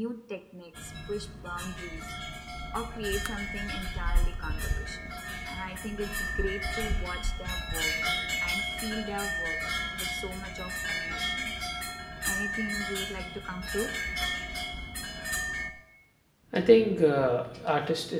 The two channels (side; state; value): both; identical; correlation 1.00